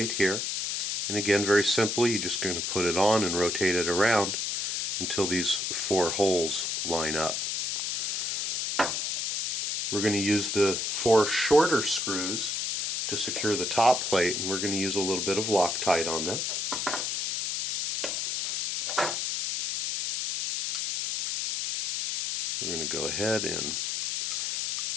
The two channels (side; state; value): left; noise; hiss, 1 dB below the sound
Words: here, and again very simply you're just going to put it on and rotate it around until these 4 holes line up. We're going to use the 4 shorter screws to secure the top plate, and we're going to use a little bit of Loctite on them. We're going to go ahead and